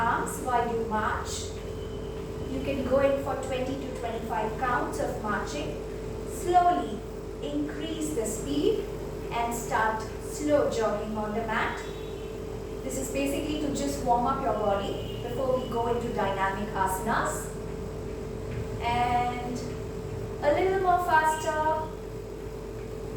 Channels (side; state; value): both; identical; correlation 1.00